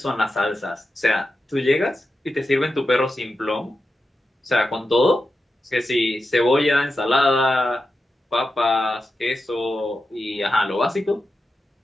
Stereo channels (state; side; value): normal; both; correlation 0.90